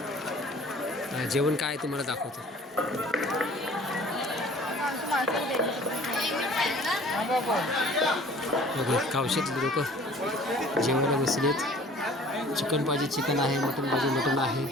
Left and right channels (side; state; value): both; normal; correlation 0.50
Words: जेवण काय तुम्हाला दाखवतो. गावशेतले लोक जेवायला बसलेत. चिकन पाहिजे चिकन आहे, मटन पाहिजे मटन आहे.